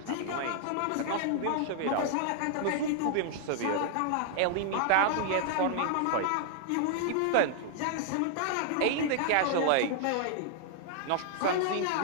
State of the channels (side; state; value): both; different; correlation -0.01